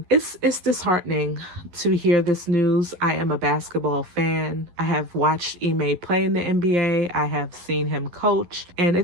It's disheartening to hear this news. I am a basketball fan. I have watched Ime play in the NBA. I have seen him coach, and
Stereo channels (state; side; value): late; left; 11 ms